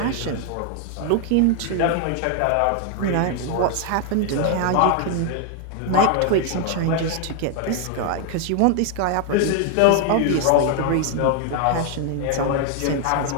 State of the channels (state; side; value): different; both; correlation 0.00